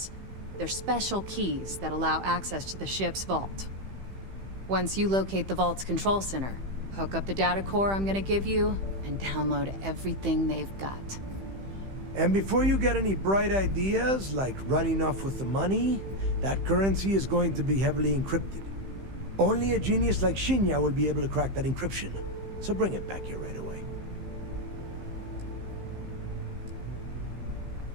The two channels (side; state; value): left; late; 15 ms